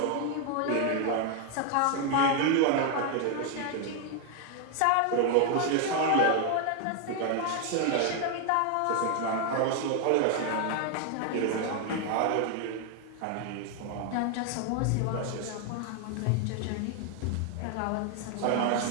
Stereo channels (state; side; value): different; both; correlation 0.01